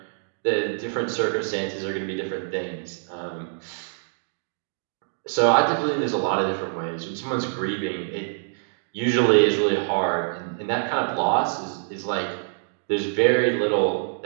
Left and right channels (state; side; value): silent; left; digital silence